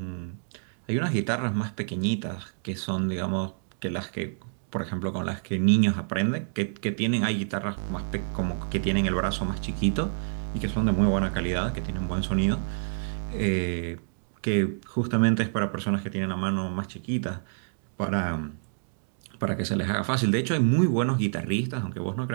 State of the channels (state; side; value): silent; left; digital silence